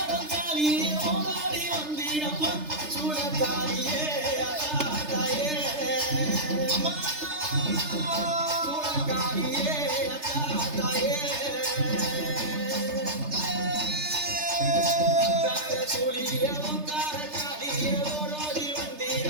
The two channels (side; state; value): left; late; 3.3 ms